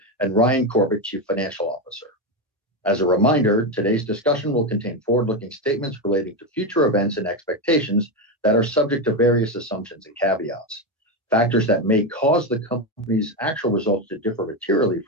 and Ryan Corbett, Chief Financial Officer. As a reminder, today's discussion will contain forward-looking statements relating to future events and expectations that are subject to various assumptions and caveats. Factors that may cause the company's actual results to differ materially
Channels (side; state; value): both; normal; correlation 0.12